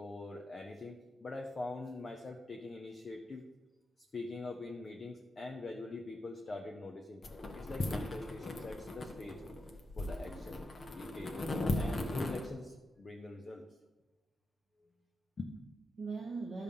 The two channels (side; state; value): both; normal; correlation 0.88